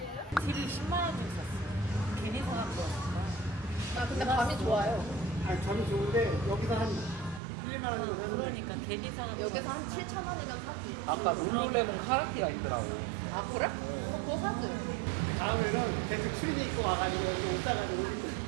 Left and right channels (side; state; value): left; drops out; at 7.4 s